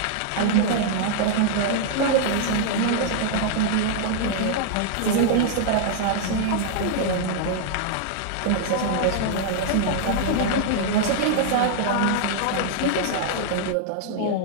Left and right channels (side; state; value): both; different; correlation -0.01